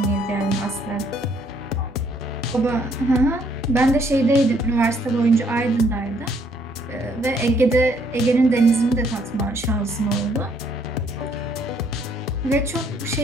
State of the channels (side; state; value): both; normal; correlation 0.67